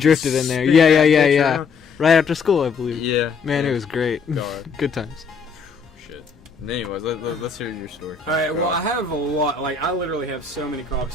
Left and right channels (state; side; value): quieter; right; 5.2 dB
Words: in there. Yeah. Right after school, I believe. Yeah, man, it was great. God. Good times. Shit. Anyways, let's hear your story. All right. Well, I have a lot. Like, I literally have so many cop